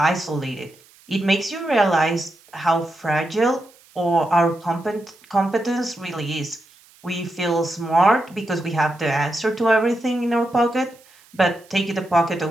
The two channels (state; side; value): noise; right; hiss, 28 dB below the sound